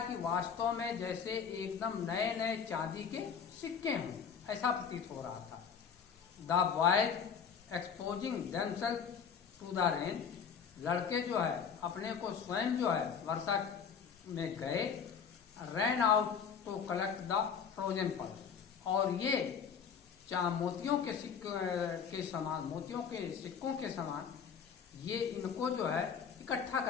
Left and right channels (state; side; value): quieter; right; 6.9 dB